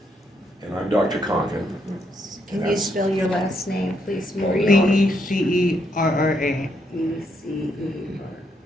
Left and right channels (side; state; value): both; normal; correlation 0.76